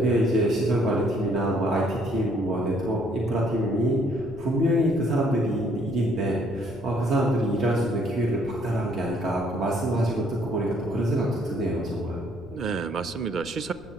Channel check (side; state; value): left; noise; rumble, 19 dB below the sound